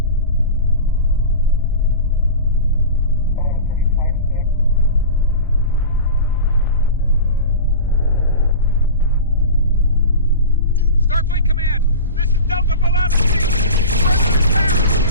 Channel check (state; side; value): inverted; both; correlation -0.31